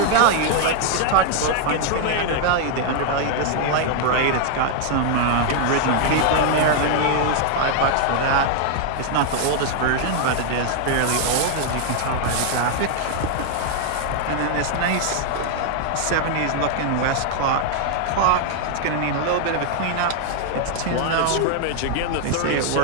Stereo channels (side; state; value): both; different; correlation 0.00